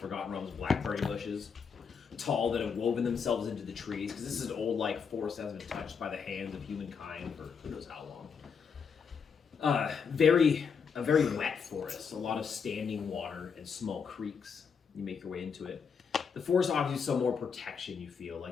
Realms blackberry bushes, tall that have woven themselves into the trees because this is an old forest that hasn't been touched by the hands of humankind for who knows how long. A very wet forest, a lot of standing water and small creeks. You make your way into it. The forest offers you some more protection, you feel,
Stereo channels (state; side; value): quieter; right; 6.2 dB